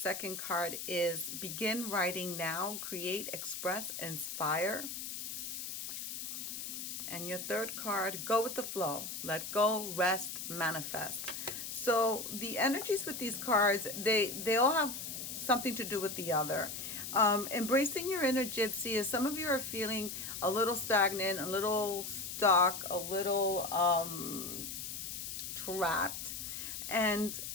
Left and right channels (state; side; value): noise; left; hiss, 6 dB below the sound